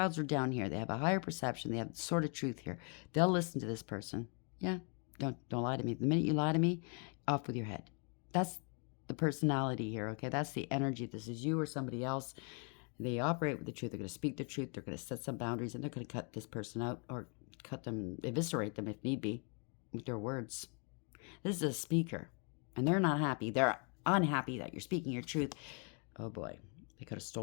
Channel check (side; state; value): right; quieter; 37.4 dB